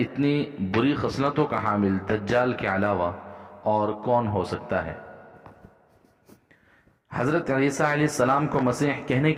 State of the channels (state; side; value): identical; both; correlation 1.00